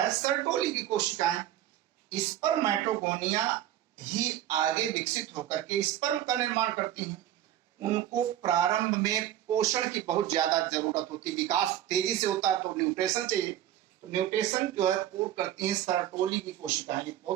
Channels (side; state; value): left; quieter; 12.3 dB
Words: सर्टोली की कोशिकाएं। स्पर्मेटोगोनिया ही आगे विकसित होकर के स्पर्म का निर्माण करती हैं। उनको प्रारंभ में पोषण की बहुत ज्यादा जरूरत होती है। विकास तेजी से होता है तो न्यूट्रिशन चाहिए। तो न्यूट्रिशन जो है पूर्ण करती हैं सर्टोली की कोशिकाएं।